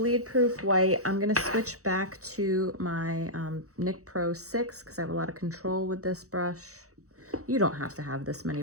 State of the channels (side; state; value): left; late; 0.65 ms